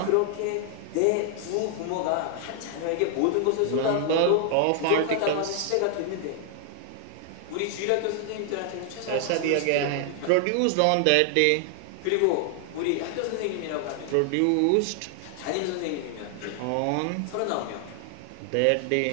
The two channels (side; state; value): both; different; correlation 0.00